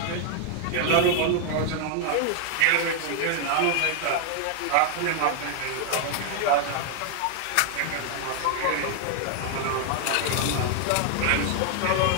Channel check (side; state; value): both; different; correlation 0.00